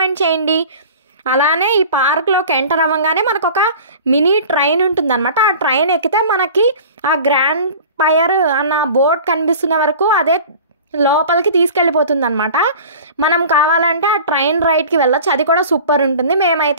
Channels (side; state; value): both; inverted; correlation -0.41